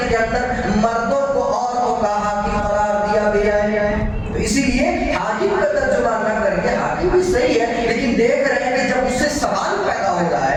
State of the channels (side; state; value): both; identical; correlation 1.00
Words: کے اندر مردوں کو عورتوں کا حاکم قرار دیا گیا ہے. تو اسی لیے حاکم کا ترجمہ نہ کر کے، حاکم بھی صحیح ہے لیکن دیکھ رہے ہیں کہ جب اس سے سوال پیدا ہو رہا